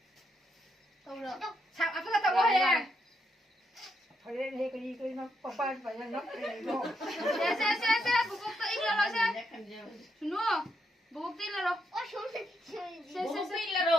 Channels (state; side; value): normal; both; correlation 0.79